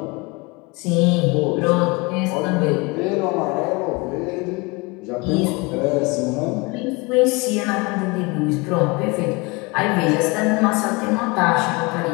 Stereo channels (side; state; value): right; quieter; 26.8 dB